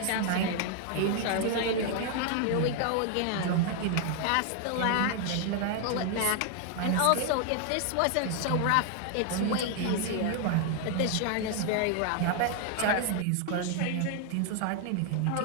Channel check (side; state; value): both; different; correlation 0.00